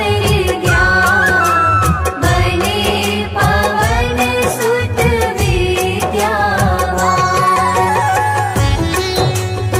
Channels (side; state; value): both; identical; correlation 1.00